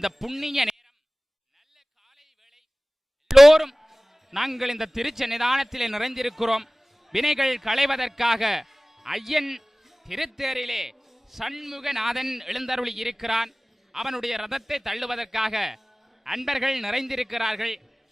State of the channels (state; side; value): normal; both; correlation 0.98